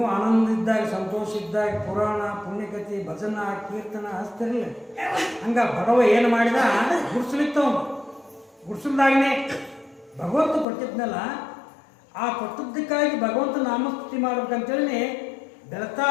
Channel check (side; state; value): right; drops out; at 10.7 s